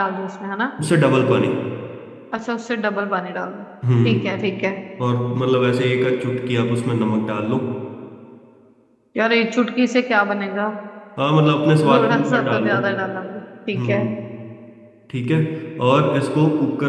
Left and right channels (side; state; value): both; identical; correlation 1.00